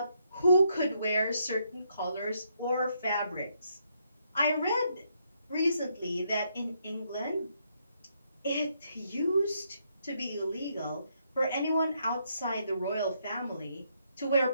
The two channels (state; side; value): inverted; both; correlation -0.75